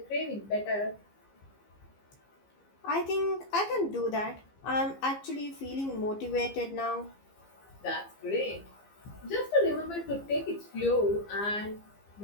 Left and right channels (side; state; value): right; late; 15 ms